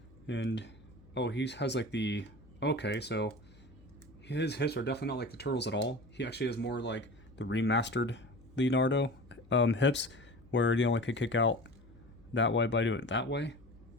And, oh, he has like the... Okay, so his hips are definitely not like the Turtles at all. He actually has more like the remastered Leonardo hips, where he only could kick out that way by doing it that way.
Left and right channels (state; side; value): noise; left; hum, 24 dB below the sound